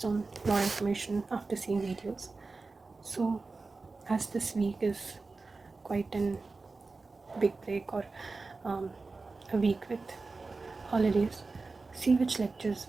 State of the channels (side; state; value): left; quieter; 3.8 dB